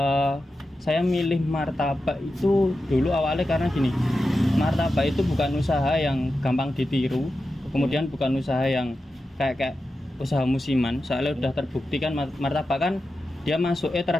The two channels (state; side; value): normal; both; correlation 0.91